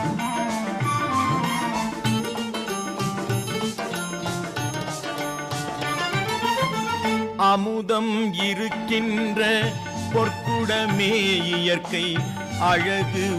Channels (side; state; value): both; identical; correlation 1.00